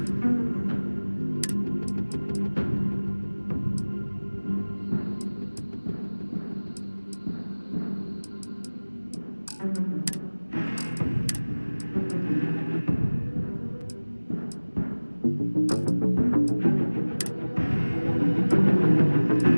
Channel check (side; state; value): both; inverted; correlation -1.00